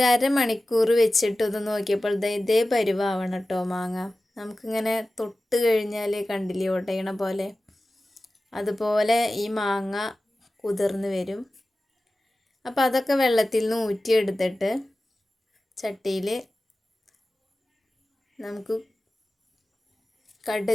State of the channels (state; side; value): normal; both; correlation 0.95